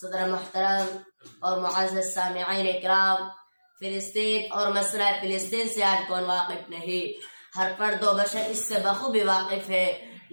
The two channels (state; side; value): inverted; both; correlation -1.00